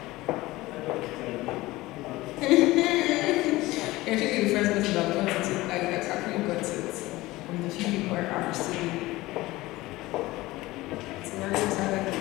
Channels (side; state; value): right; quieter; 19.0 dB